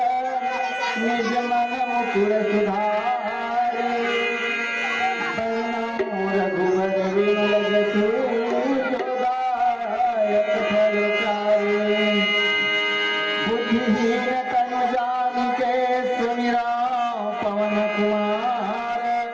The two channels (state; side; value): identical; both; correlation 1.00